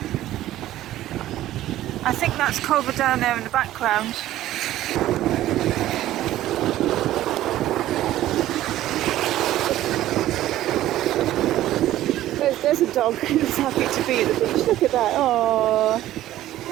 I think that's Culver Down there in the background. There's a dog who's happy to be at the beach. Look at that. Oh.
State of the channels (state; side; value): quieter; left; 14.0 dB